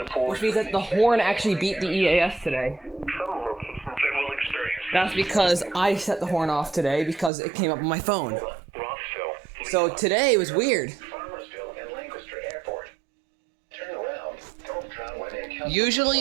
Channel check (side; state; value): left; drops out; at 7.3 s